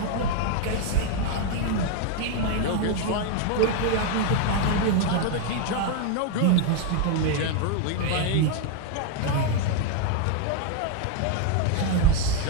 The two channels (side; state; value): both; different; correlation 0.00